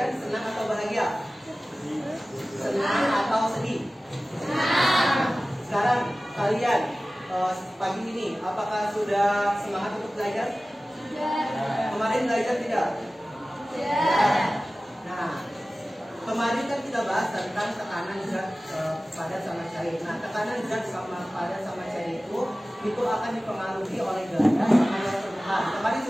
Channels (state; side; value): normal; both; correlation 0.97